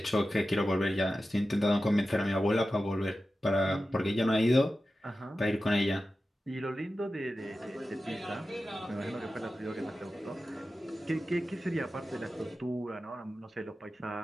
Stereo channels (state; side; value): normal; both; correlation 0.93